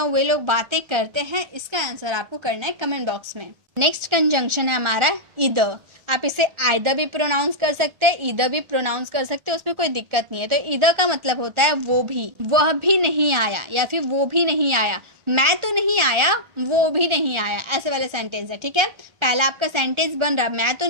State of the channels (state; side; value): late; left; 1.6 ms